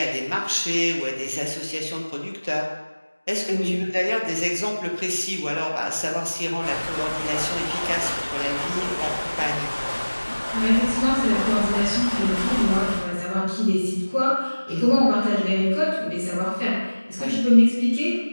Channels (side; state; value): both; inverted; correlation -1.00